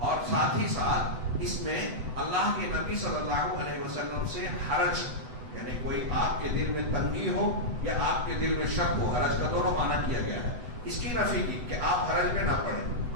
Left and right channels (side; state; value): left; late; 8.0 ms